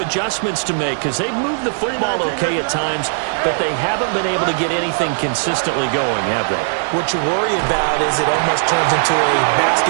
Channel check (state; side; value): silent; left; digital silence